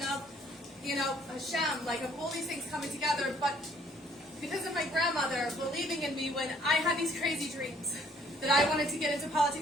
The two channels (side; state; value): both; normal; correlation 0.62